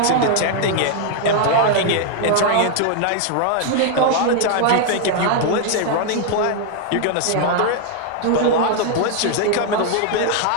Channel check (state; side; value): different; both; correlation 0.00